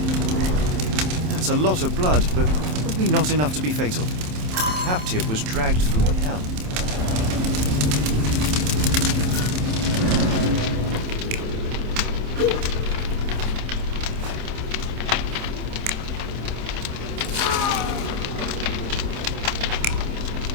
That's a lot of blood, but probably not enough to be fatal. The captive was dragged through hell.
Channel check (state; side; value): late; left; 27 ms